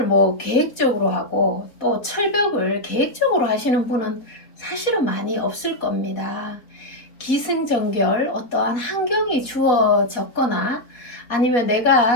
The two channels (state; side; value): late; right; 4.1 ms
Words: 뭐 계획적으로 하고 또 철벽을 계획적으로 하시는 분은 사실은 많이 없을 겁니다. 기승전결 어떠한 환경이 주어졌거나 아니면